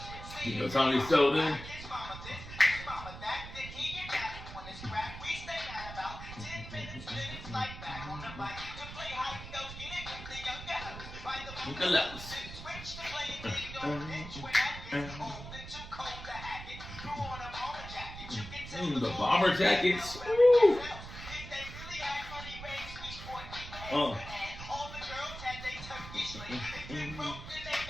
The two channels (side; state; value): right; noise; rumble, 11 dB below the sound